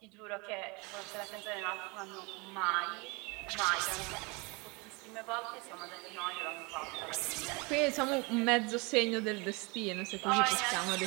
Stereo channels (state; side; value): quieter; left; 28.2 dB